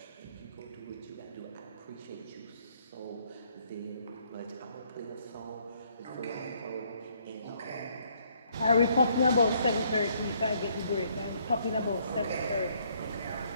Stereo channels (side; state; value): both; inverted; correlation -0.67